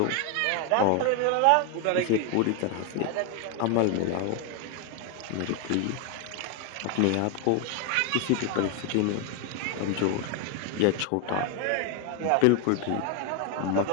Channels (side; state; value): both; different; correlation 0.01